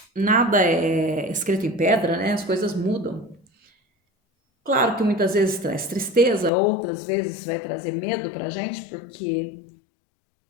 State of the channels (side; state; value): right; drops out; at 6.5 s